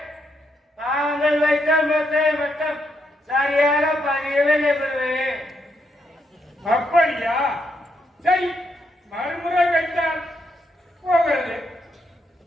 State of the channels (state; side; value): normal; both; correlation 0.78